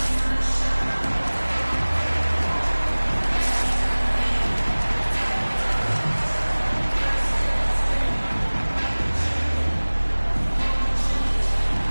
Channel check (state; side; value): inverted; both; correlation -1.00